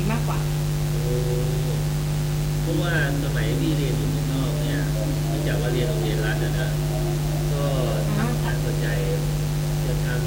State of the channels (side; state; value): both; identical; correlation 1.00